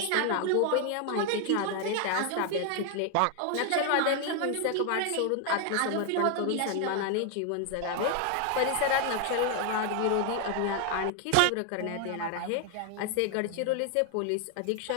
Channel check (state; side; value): different; both; correlation 0.00